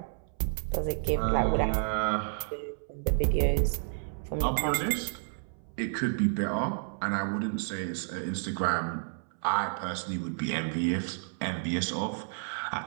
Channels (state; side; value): silent; left; 57 dB below the other